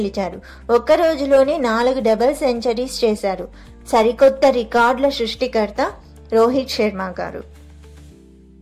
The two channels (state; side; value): identical; both; correlation 1.00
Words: ఒక్క రోజులోనే 4 డబుల్ సెంచరీస్ చేశారు. సరికొత్త రికార్డుల సృష్టికర్త రోహిత్ శర్మ గారు.